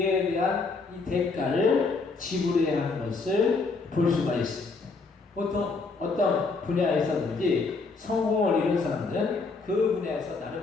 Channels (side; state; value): right; quieter; 4.1 dB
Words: 대한 이 대가를 지불해야 하는 것을 볼 수가 있습니다. 보통 어떤 분야에서든지 성공을 이룬 사람들은 그 분야에서